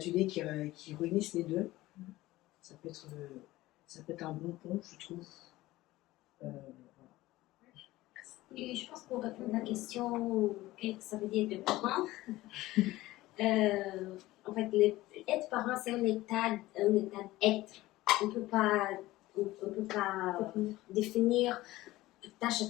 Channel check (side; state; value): right; quieter; 17.6 dB